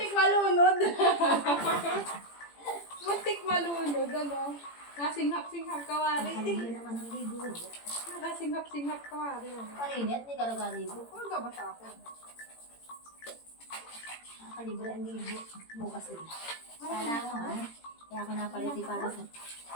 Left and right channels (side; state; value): right; late; 18 ms